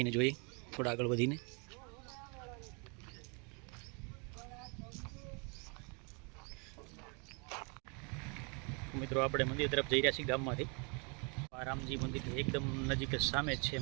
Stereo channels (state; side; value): quieter; left; 34.4 dB